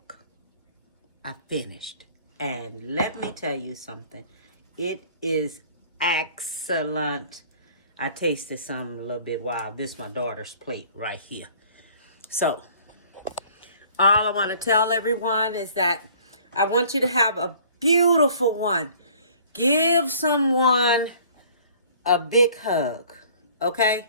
I finished. And let me tell you something. It is excellent. I tasted some a little bit while. This is my daughter's plate right here. So, all I want to tell everyone is that I want you to have a beautiful one. Give someone a big hug, okay?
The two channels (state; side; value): inverted; both; correlation -0.53